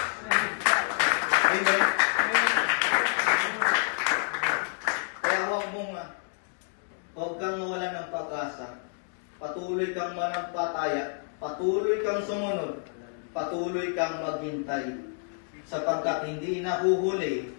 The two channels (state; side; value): silent; right; 55 dB below the other